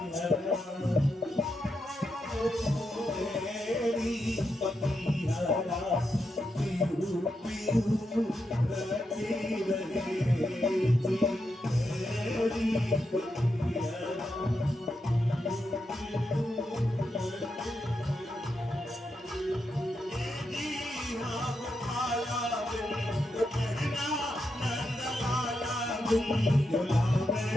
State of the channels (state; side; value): normal; both; correlation 0.84